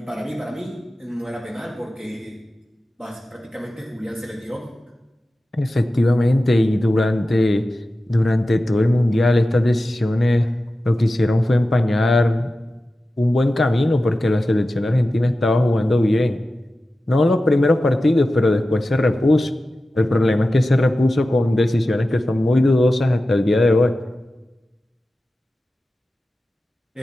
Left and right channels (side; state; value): both; normal; correlation 0.94